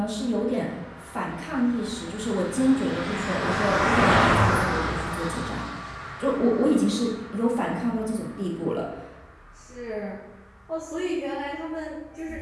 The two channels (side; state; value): both; identical; correlation 1.00